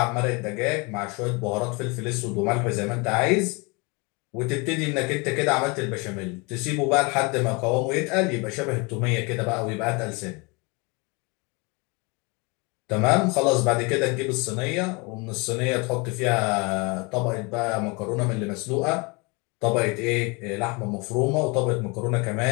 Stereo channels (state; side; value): quieter; right; 28.7 dB